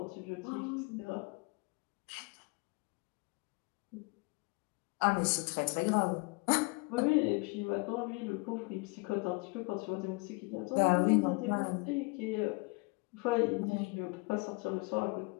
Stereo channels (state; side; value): quieter; right; 28.8 dB